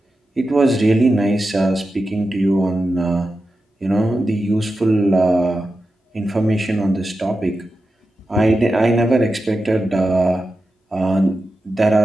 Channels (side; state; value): both; normal; correlation 0.91